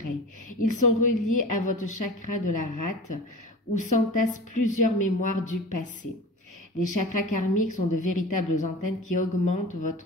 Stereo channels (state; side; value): normal; both; correlation 0.35